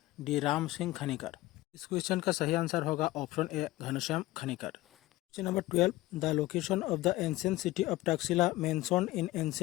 डी राम सिंह खनिकर। इस क्वेश्चन का सही आंसर होगा option A Ghanshyam Khanikar. Question number 12, the location of the ancient city of Taxila mentioned in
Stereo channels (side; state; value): right; quieter; 17.6 dB